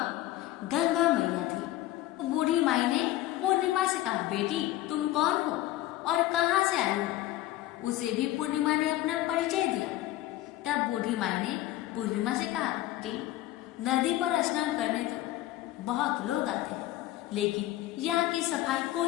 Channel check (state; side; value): quieter; right; 15.1 dB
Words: गंगा मैया थी। तो बूढ़ी माई ने पूर्णिमा से कहा, बेटी तुम कौन हो और कहाँ से आई हो। उसे भी पूर्णिमा ने अपना परिचय दिया। तब बूढ़ी माई ने पूर्णिमा से कहा कि नदी पर स्नान करने तो बहुत लोग आते हैं, लेकिन यहाँ की सफाई